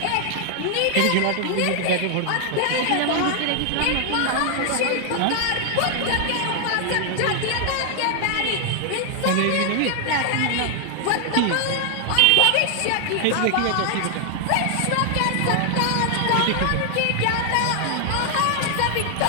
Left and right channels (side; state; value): both; different; correlation 0.00